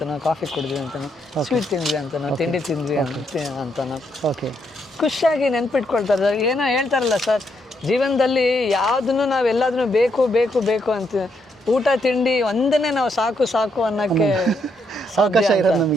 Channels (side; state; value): both; normal; correlation 0.77